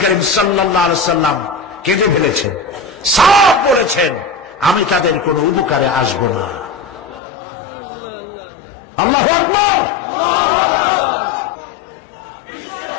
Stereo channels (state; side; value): drops out; right; at 7.2 s